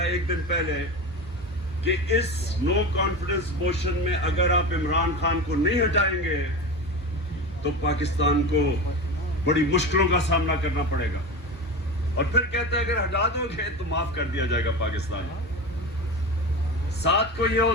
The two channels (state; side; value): normal; both; correlation 0.27